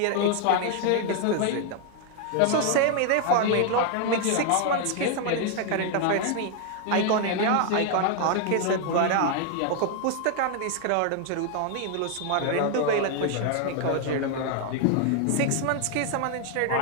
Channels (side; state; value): both; different; correlation 0.00